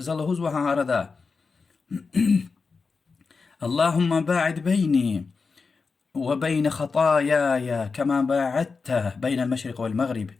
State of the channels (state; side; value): quieter; right; 4.7 dB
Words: هزوا ها أردا اللهم باعد بيني وبين خطاياي كما باعدت بين المشرق والمغرب